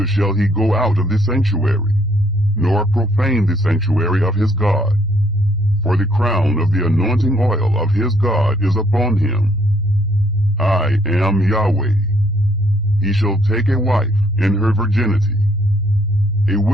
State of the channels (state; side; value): normal; both; correlation 0.67